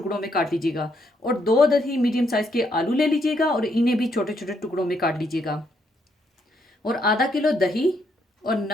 में काट लीजिएगा। और 2 अदद ही मीडियम साइज़ के आलू ले लीजिएगा और इन्हें भी छोटे छोटे टुकड़ों में काट लीजिएगा। और आधा किलो दही और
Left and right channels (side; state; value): both; normal; correlation 0.74